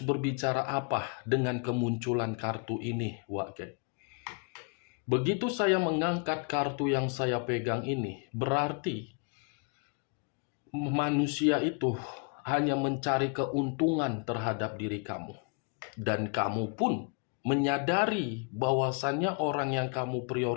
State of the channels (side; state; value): right; quieter; 35.9 dB